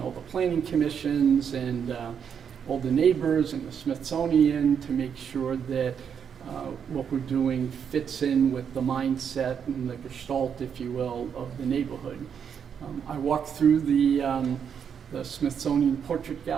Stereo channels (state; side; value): quieter; left; 7.5 dB